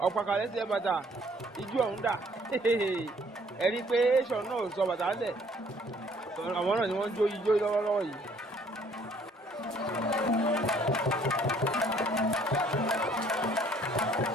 ọ̀pàkàlẹ́ sí ẹ bàtà ijú ọ̀hún dà ẹ̀rí pé ṣọ̀ náà sọ bàtà lẹ̀ àwọn náà ni wọ́n jó ijó lọ́wọ́lọ́wọ́ yìí.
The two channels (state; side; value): normal; both; correlation 0.60